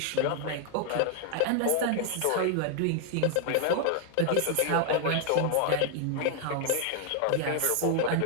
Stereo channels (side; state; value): both; different; correlation 0.00